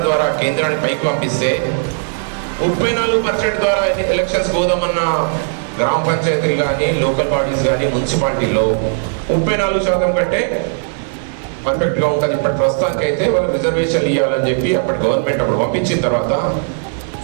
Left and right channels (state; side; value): silent; left; digital silence